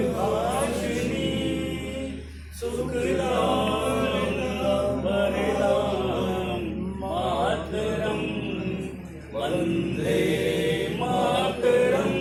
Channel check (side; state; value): both; identical; correlation 1.00